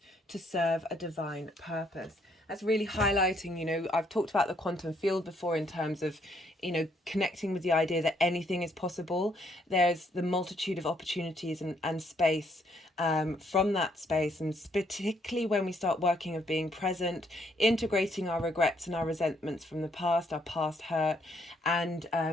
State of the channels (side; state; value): both; normal; correlation 0.70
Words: to serve a divine purpose. That's really highlighting, you know, I've talked about the quantum field before in terms of, you know, connecting with the idea that anything is possible. There's the multitude of opportunities and space from that space, and particularly when we start working of being present, integrating our regrets and our resentments from the past, our past hurt, and